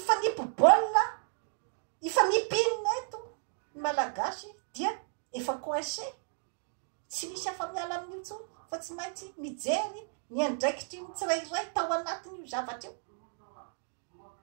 ifanipinina eto ny malagasy dia efa coincé tsy misy afa miala amin'ny intsony fa tsy maintsy mijery ny andraikitry ny tsirairay tao anatiny io zavatra io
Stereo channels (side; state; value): left; silent; digital silence